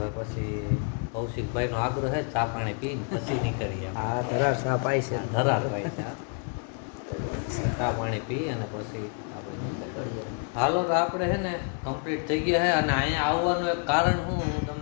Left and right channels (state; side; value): quieter; right; 39.7 dB